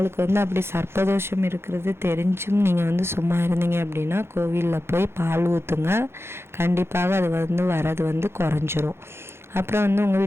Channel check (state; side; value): late; left; 0.12 ms